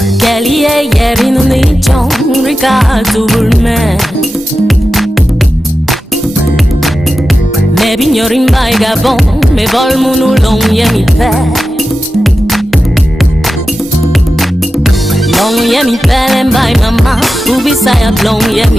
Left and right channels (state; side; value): normal; both; correlation 0.92